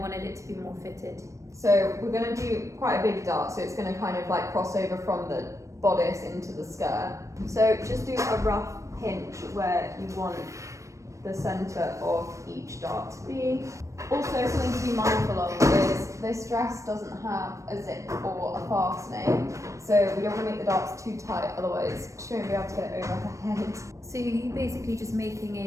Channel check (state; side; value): late; left; 0.15 ms